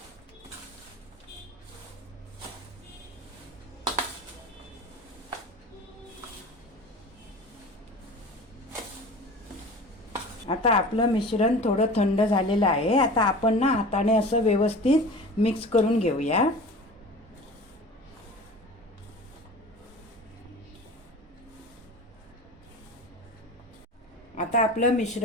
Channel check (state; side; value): normal; both; correlation 0.37